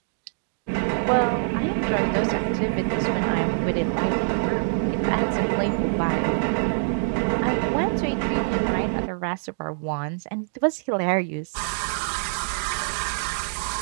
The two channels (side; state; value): left; silent; digital silence